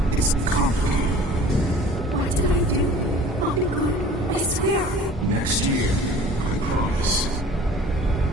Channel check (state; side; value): normal; both; correlation 0.46